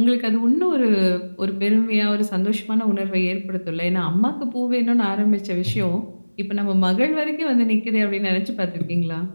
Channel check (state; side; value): inverted; both; correlation -1.00